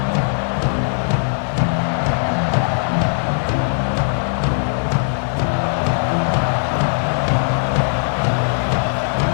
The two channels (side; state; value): right; silent; digital silence